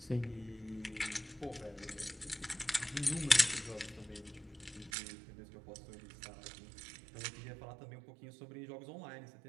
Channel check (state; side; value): drops out; left; at 4.9 s